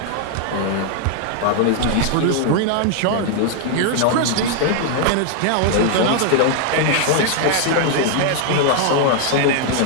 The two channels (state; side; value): different; both; correlation 0.00